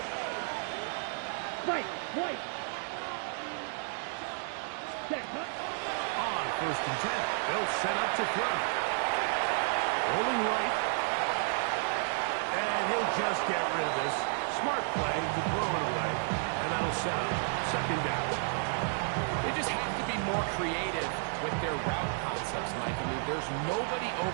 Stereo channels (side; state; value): left; silent; 56 dB below the other